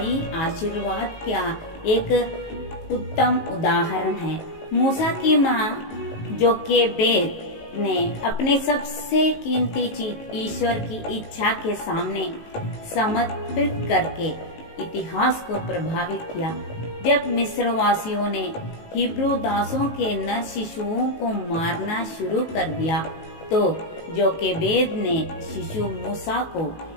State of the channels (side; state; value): right; late; 18 ms